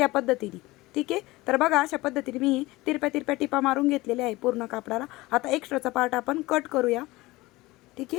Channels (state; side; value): quieter; right; 20.3 dB